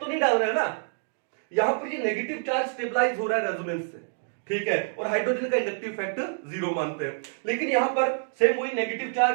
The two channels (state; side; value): silent; left; digital silence